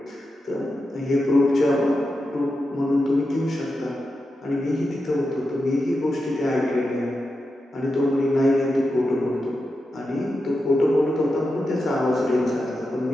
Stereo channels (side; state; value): both; normal; correlation 0.89